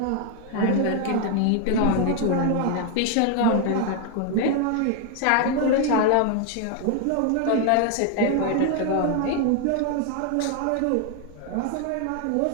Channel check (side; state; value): both; different; correlation 0.01